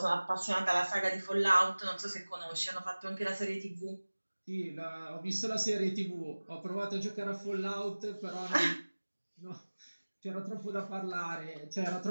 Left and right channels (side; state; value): both; inverted; correlation -1.00